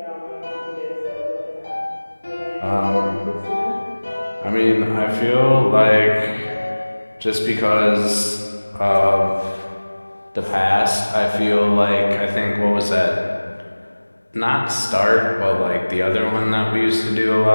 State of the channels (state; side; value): inverted; both; correlation -1.00